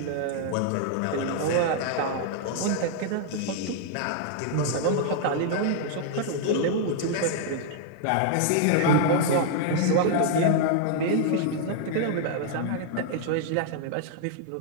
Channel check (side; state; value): both; different; correlation -0.01